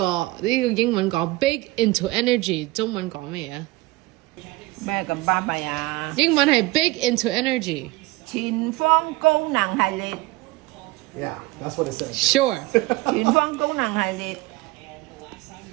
英文講 big into energy， 中文講咩啊？咩咁巴閉啊？英文係 big into energy。前方高能系列。Yeah, that's what it says. Sure。前方高能系列。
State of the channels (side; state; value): left; quieter; 20.6 dB